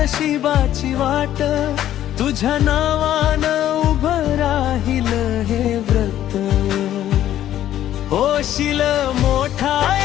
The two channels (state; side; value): quieter; right; 12.1 dB